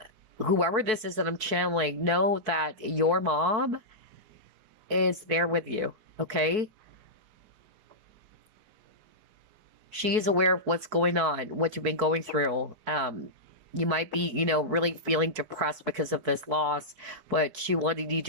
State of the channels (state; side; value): late; left; 4.6 ms